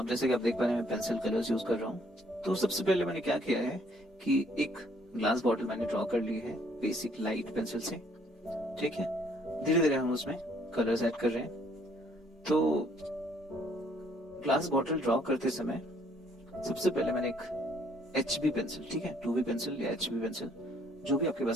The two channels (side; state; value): both; normal; correlation 0.64